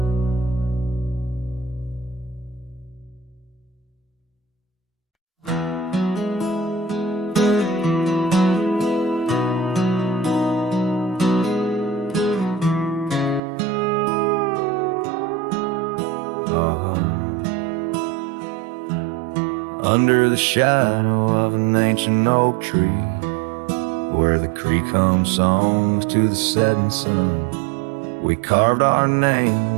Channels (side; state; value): left; drops out; at 13.4 s